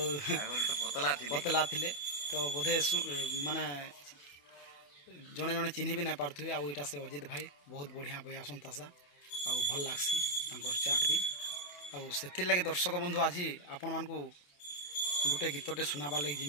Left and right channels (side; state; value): right; late; 28 ms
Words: पतला थे तो बोधे माने जड़े जड़े चिन्ह भी नहीं पार्थ्वे आईटा से अजित भाई बहुत बढ़िया बयासन तासा आउ भल लगसी चाट भी आउ से लगे दर्शक बंधु आज आपण मान गोटे गीतटे सुनाबार लगे